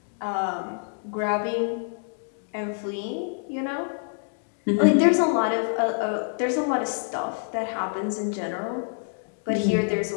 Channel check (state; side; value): silent; right; digital silence